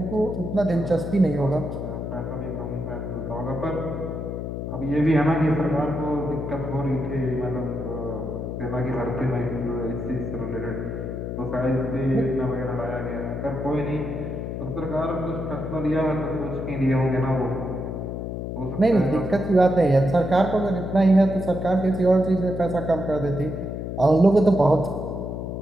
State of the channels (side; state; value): left; noise; hum, 5 dB below the sound